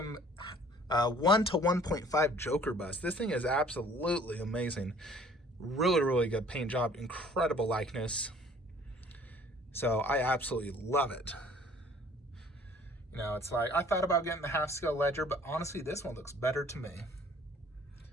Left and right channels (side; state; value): both; normal; correlation 0.54